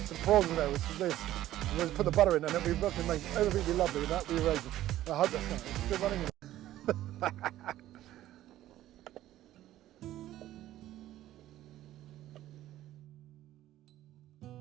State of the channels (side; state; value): left; quieter; 13.9 dB